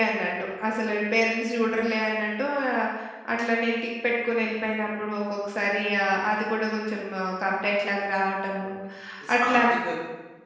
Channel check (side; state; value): both; identical; correlation 1.00